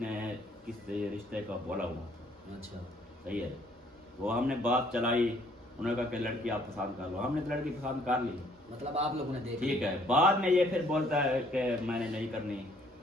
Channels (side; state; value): both; normal; correlation 0.63